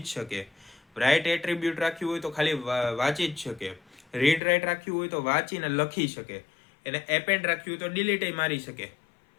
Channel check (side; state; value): right; drops out; at 4.4 s